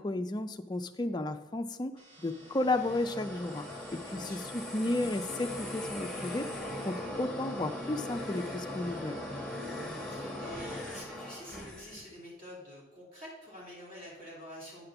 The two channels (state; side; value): normal; both; correlation 0.70